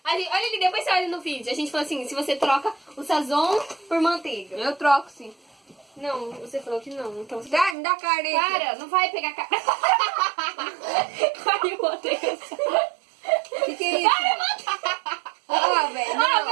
olha ali, depois você olha no vídeo. A gente falou assim, se você troca o sazon por manteiga. Eu troco sim. Não, você falou que não. Então você... Me dá a carne aí. Para, não vai pegar cara. Caiu a manteiga. Que é isso? Ah, velho. Ah,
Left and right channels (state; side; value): drops out; left; at 7.8 s